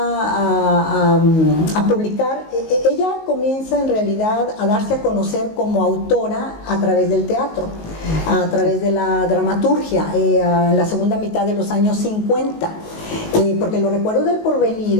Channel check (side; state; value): right; late; 19 ms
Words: publicar? Ella comienza en realidad a darse a conocer como autora a través del teatro, a través de la dramaturgia, en la segunda mitad de los años 50, porque Los recuerdos del